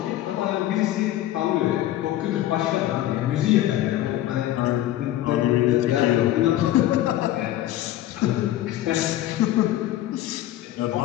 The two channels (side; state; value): right; quieter; 13.9 dB